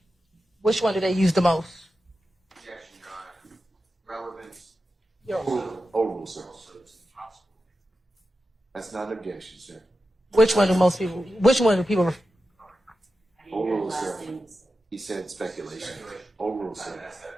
Which one do they use the most? Objection, Your Honor. Relevance. Oral, sir. That's not an objection, sir. Which one do people Oral, sir. He said speculation. Oral, sir.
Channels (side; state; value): both; normal; correlation 0.91